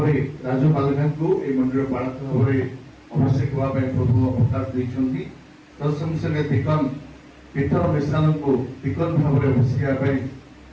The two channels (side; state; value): both; identical; correlation 1.00